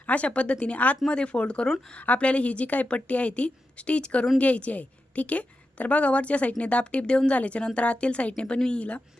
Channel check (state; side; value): normal; both; correlation 0.89